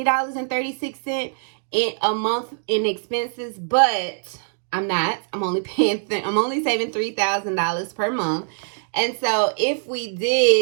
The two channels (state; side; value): silent; left; digital silence